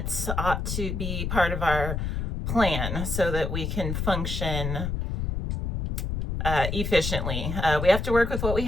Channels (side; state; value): left; noise; rumble, 2 dB below the sound